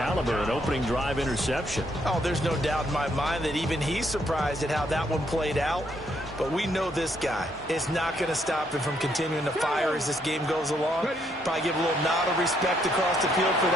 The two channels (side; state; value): both; normal; correlation 0.73